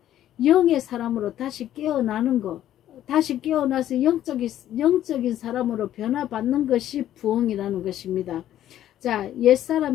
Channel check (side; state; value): right; quieter; 12.1 dB